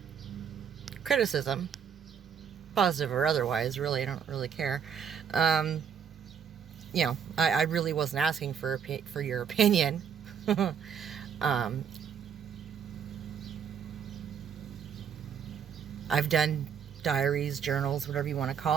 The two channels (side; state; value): left; quieter; 7.6 dB